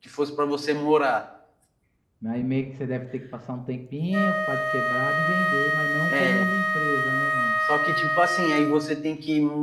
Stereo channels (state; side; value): identical; both; correlation 1.00